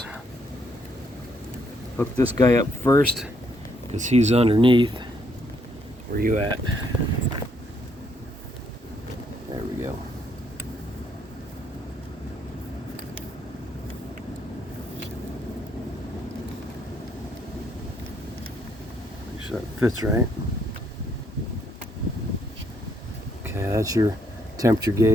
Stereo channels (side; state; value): both; normal; correlation 0.71